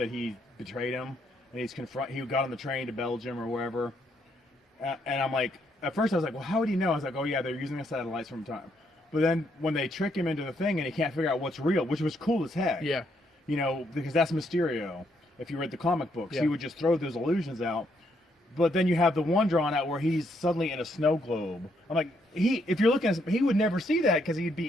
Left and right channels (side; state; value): both; normal; correlation 0.74